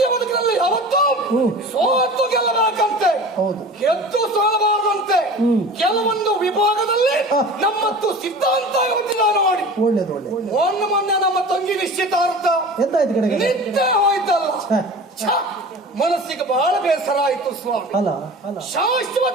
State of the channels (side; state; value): both; normal; correlation 0.37